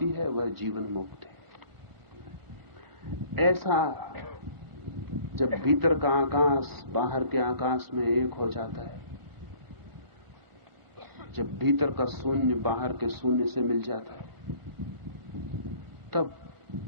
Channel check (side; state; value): left; late; 1.4 ms